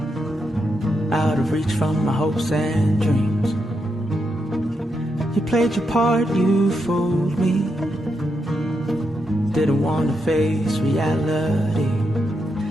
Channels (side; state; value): both; normal; correlation 0.83